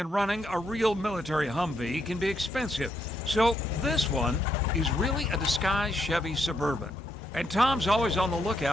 running a real military Humvee can be expensive, so this one is really a disguised Chevy Suburban. And Tom's always on the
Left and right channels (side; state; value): both; normal; correlation 0.77